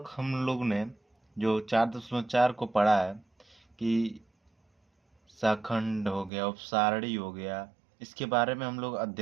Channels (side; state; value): left; drops out; at 6.3 s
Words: हम लोग ने जो 4.4 को पढ़ा है कि शाखंड हो गया, उपसारणी हो गया, इसके बारे में हम लोग